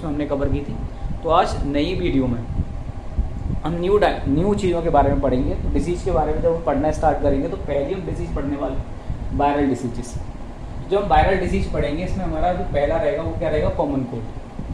हमने कवर की थी। तो आज नई वीडियो में हम न्यू चीज़ों के बारे में पढ़ेंगे। तो डिसीज़ के बारे में जब हम पढ़ना स्टार्ट करेंगे तो पहले हम डिसीज़ पढ़ने वाले वायरल डिसीजेस। जो हम वायरल डिसीज पढ़ेंगे, इसमें हमारा जो पहला रहेगा वो क्या रहेगा, कॉमन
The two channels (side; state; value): both; identical; correlation 1.00